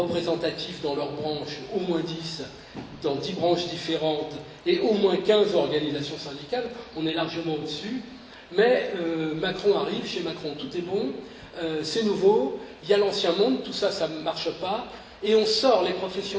dans leur branche, au moins 10, dans 10 branches différentes, et au moins 15 organisations syndicales, on est largement au-dessus, mais Macron arrive, chez Macron tout est bon, c'est nouveau, il y a l'ancien monde, tout ça, ça ne marche pas, et on sort les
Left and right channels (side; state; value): both; identical; correlation 1.00